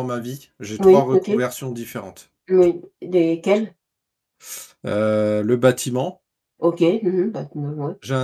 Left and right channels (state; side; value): identical; both; correlation 1.00